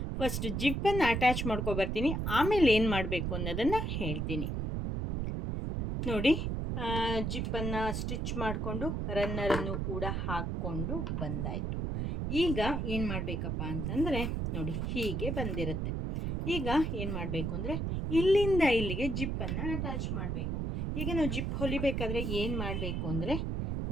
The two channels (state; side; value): noise; right; rumble, 1 dB below the sound